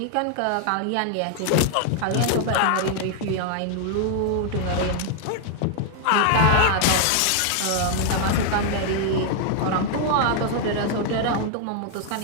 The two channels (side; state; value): both; different; correlation 0.00